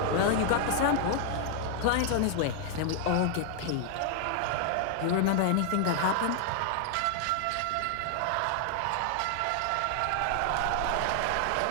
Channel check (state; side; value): different; both; correlation 0.00